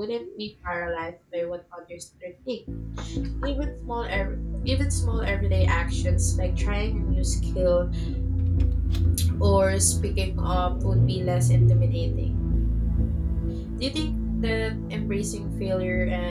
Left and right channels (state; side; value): identical; both; correlation 1.00